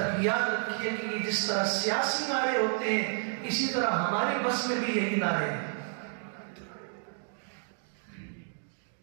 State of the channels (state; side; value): silent; left; 57 dB below the other